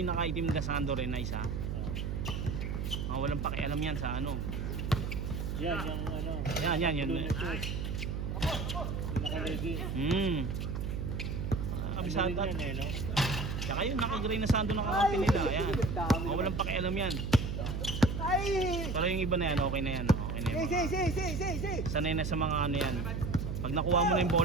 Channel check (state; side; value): noise; right; hum, 2 dB below the sound